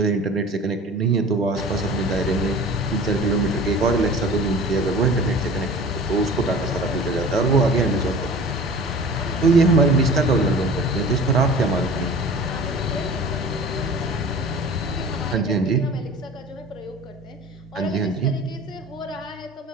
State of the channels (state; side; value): normal; both; correlation 0.41